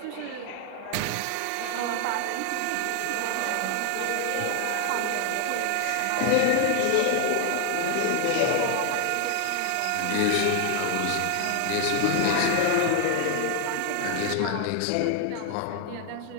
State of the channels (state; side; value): different; both; correlation 0.00